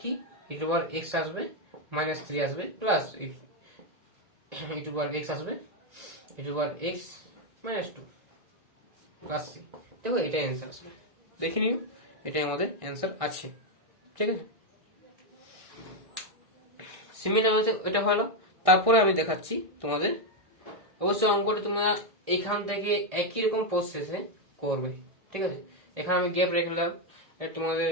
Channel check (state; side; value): late; left; 1.6 ms